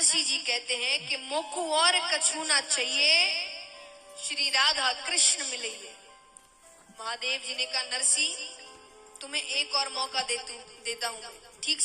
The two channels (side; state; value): both; identical; correlation 1.00